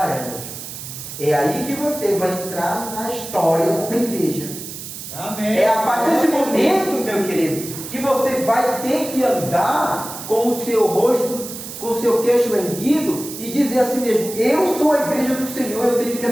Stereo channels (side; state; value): right; noise; hiss, 10 dB below the sound